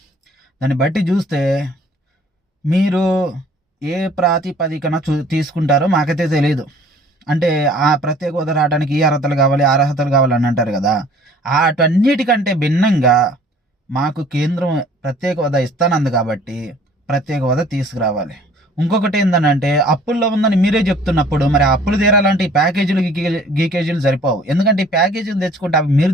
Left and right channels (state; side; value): normal; both; correlation 0.54